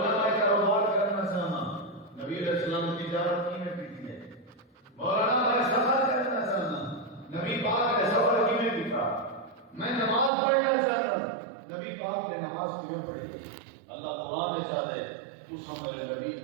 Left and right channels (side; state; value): left; drops out; at 10.3 s